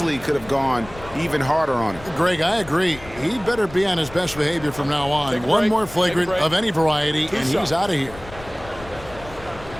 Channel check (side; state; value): left; noise; rumble, 17 dB below the sound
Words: could have gone even harder on him. Greg, I agree. He better be on his best behavior from now on. One more flagrant of any variety, and he's out of here.